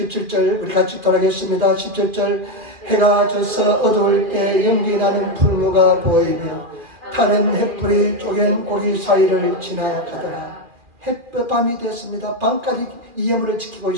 우리 같이 돌아가겠습니다. 17절. 해가 져서 어두울 때 연기 나는 풀무가 보이며 타는 햇불이 쪼갠 고리 사이를 지나가더라. 밤이 되었습니다. 밤까지 이 예물을 지키고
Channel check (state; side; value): late; left; 2.4 ms